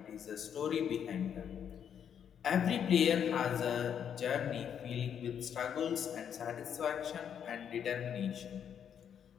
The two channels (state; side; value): quieter; right; 8.4 dB